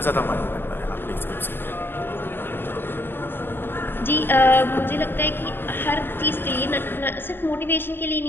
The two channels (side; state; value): right; late; 0.10 ms